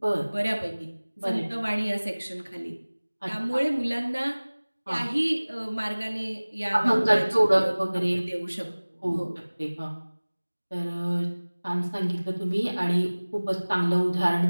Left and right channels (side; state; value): both; inverted; correlation -1.00